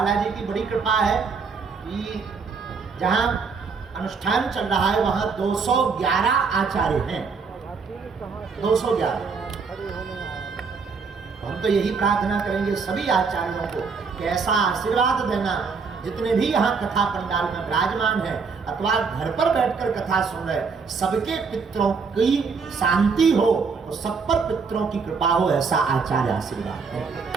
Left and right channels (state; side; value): quieter; left; 5.2 dB